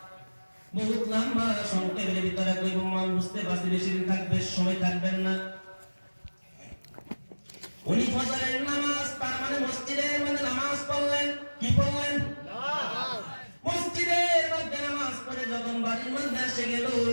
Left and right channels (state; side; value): inverted; both; correlation -1.00